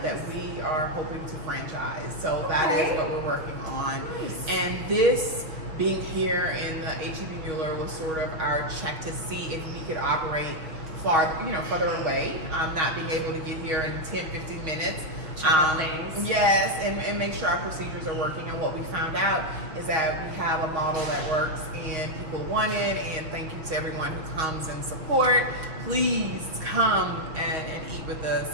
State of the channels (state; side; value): late; left; 6.0 ms